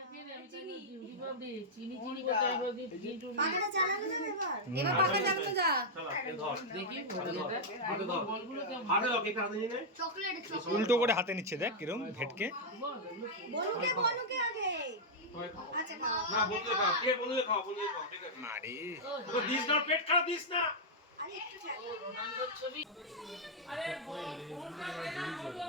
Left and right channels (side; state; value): both; normal; correlation -0.04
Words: আমি চিনি দিবাবি চিনি কোথায় বলি চিনি। পাখাটা চালানো যাবে এবার? এবার পাখা চালানো যা। চল এ ধর। দেখি হাতে ধর। বলগুলো কেমন? হাতে দাও, কেক হাতে নিয়ে নে। চকলেট উল্টো করে হাতে নিচ্ছে, দেখ কিরম ভেটকে। বলুকে আগে। আচ্ছা খাও। না বন্ধুকে খাও, কে বন্ধুকে খাও, বন্ধুকে খাও, ঠিক আছে। আরে তো দিস না, পেট খারাপ দিস না। আরে একটু ছাড়। রোনাল্ডোর ছবি। আরে ফোনটা দে না বলু